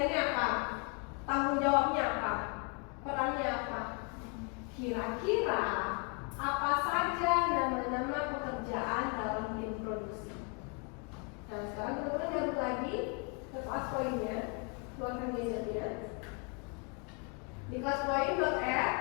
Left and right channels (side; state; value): right; quieter; 35.0 dB